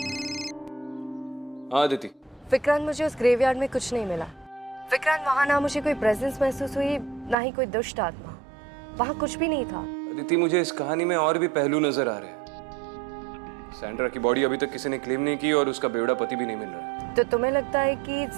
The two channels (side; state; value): left; drops out; at 7.4 s